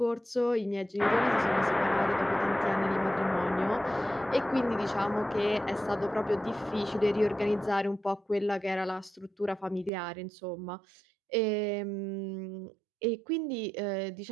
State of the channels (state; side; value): drops out; left; at 9.9 s